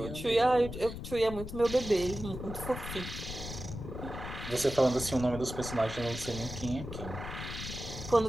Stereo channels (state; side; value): noise; left; rumble, 9 dB below the sound